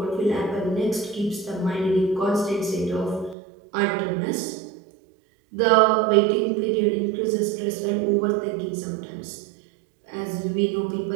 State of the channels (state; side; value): drops out; left; at 3.4 s